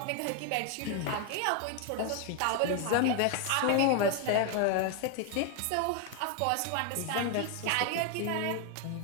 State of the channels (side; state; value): both; different; correlation 0.01